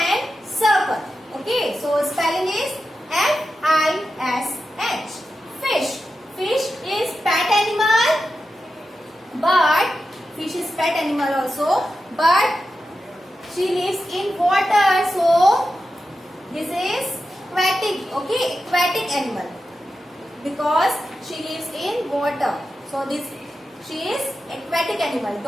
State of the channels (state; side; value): normal; both; correlation 0.90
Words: circle. Okay, so spelling is F-I-S-H. Fish. Fish is pet animal, but fish is pet animal also, but she lives in water, so this is aquatic. Okay, aquatic animal because she lives in water. So this she is aquatic animal.